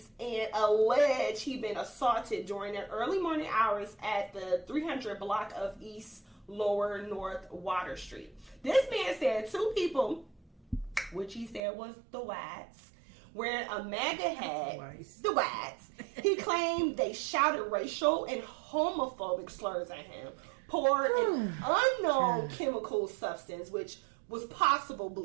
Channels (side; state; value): left; drops out; at 11.6 s